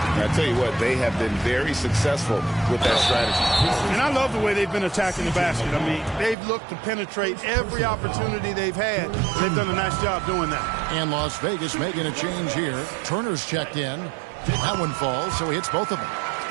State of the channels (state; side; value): drops out; left; at 6.4 s